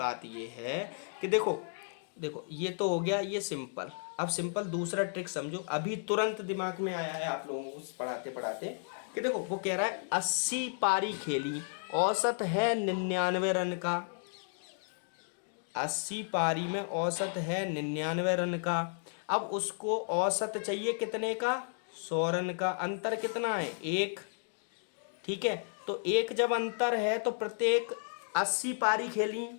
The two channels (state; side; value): silent; right; digital silence